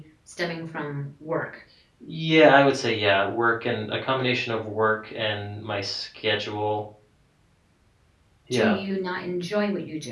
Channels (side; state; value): both; identical; correlation 1.00